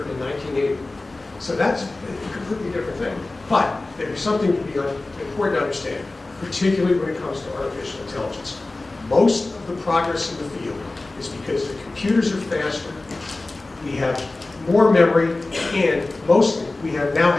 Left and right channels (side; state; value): right; quieter; 3.1 dB